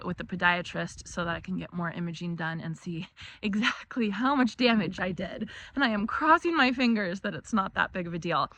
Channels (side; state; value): both; identical; correlation 1.00